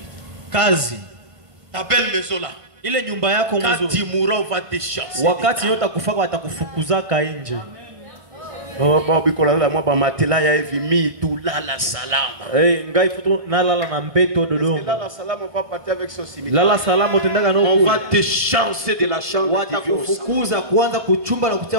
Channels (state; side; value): late; left; 1.5 ms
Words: Kazi Ta belle maison là. ile nyumba yako Quand mzuri, tu mourras, on va te chasser. wakati yote akufaka watakufukuzaka nje. Oh, matela ya hivi mi tu lala salama. Ngai futu nalala na mbeto Dodoma. Lala salama, on va partir avec son cimetière. Lala salama utendaga no On kule. va te chasser de la chambre. Watakufukuza kuanza kuchumba na